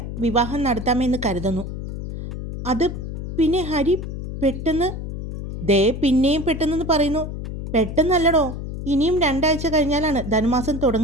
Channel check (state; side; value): noise; left; hum, 6 dB below the sound